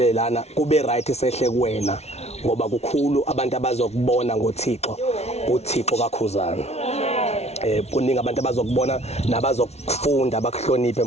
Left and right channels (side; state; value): right; late; 0.31 ms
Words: lana kube right esehle kuwena ngoba kukhulu abantu abazokubona ngoThixo uThixo kaKhuzani kuningi abantu abazokubona nabazokufunda bakuhloniphe